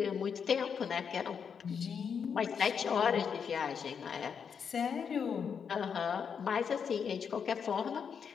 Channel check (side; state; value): right; quieter; 6.8 dB